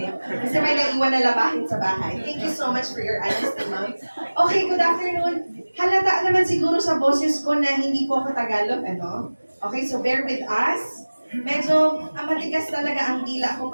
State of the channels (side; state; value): both; inverted; correlation -1.00